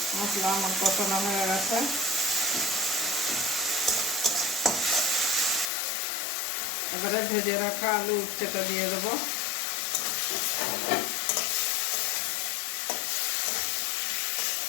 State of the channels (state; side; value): drops out; right; at 5.7 s